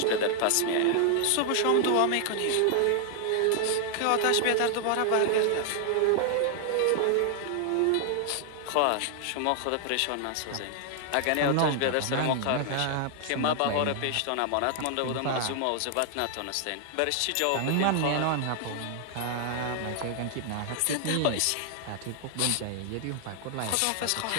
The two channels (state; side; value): different; both; correlation 0.00